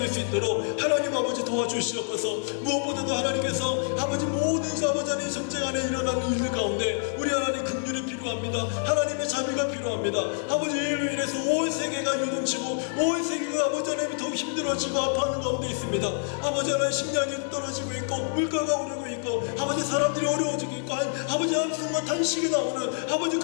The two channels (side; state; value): right; silent; digital silence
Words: 수 있도록 하나님 아버지 도와주시옵소서. 무엇보다도 하나님께서 아버지 모든 아버지 하나님 전쟁 안에 일어나는 일들 가운데 우리 하나님 긍휼이 필요합니다. 하나님의 자비가 필요합니다. 아버지, 이로 인해서 온 세계가 요동치고 온 세계가 아버지 하나님 더욱 힘들어지고 아파하는 가운데 있습니다. 아버지 하나님 식량이 떨어지고 있고 물가가 오르고 있고 아버지 사람들이 어려워지고 있고 아버지 한숨과 탄식이 나오는 아버지